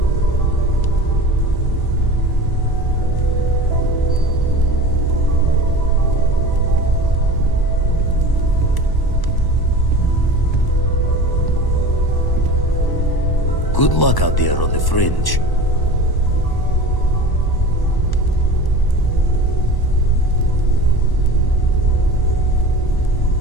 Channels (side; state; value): right; late; 1.1 ms